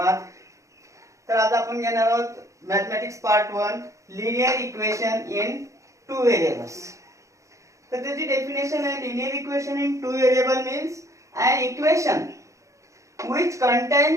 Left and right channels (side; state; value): left; late; 0.15 ms